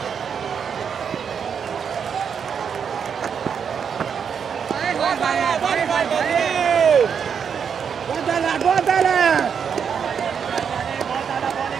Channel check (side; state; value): left; quieter; 7.0 dB